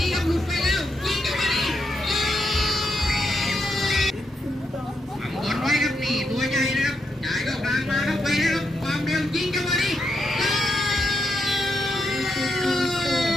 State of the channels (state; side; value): normal; both; correlation 0.82